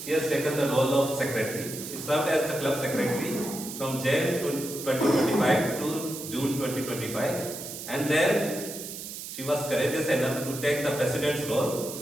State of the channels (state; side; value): noise; right; hiss, 9 dB below the sound